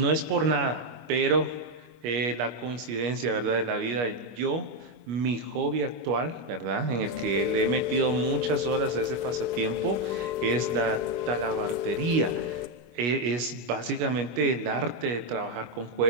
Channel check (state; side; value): late; left; 25 ms